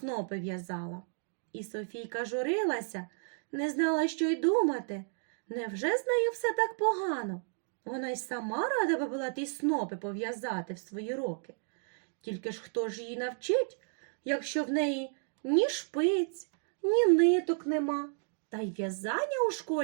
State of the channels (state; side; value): silent; left; 56 dB below the other